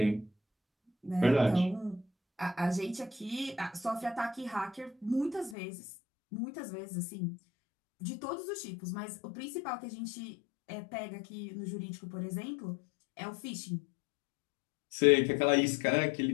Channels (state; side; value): drops out; right; at 5.6 s